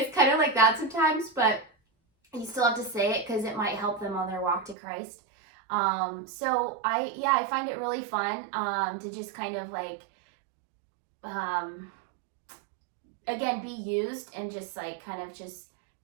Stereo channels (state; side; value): drops out; left; at 4.8 s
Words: kind of like that sometimes, but you still have to say it because it might help them on their walk to Christ. So I find it really fun to just kind of like, again, be used and just like kind of just